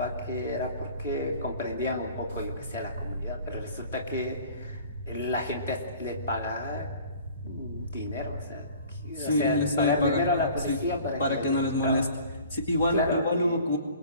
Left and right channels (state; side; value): inverted; both; correlation -0.48